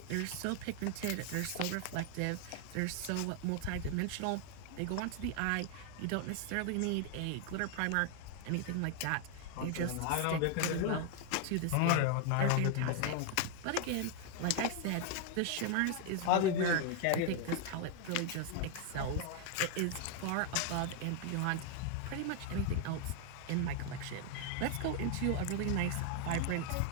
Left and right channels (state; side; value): different; both; correlation 0.00